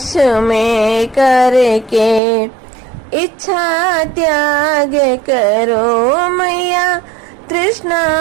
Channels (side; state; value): left; drops out; at 2.2 s